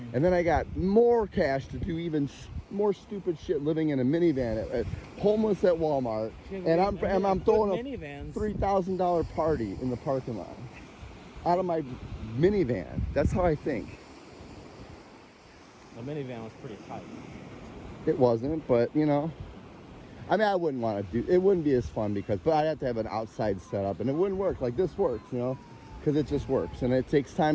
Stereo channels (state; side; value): identical; both; correlation 1.00